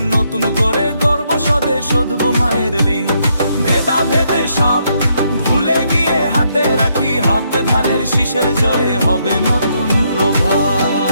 নতুন করে গর্ব স্বদেশ শোধব মায়ের ঋণ। ভেদা ভেদে সব ভুলে গিয়ে হাতে রাখি হাত, ধানের শীষের জয়ে হবে নতুন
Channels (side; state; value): both; inverted; correlation -0.75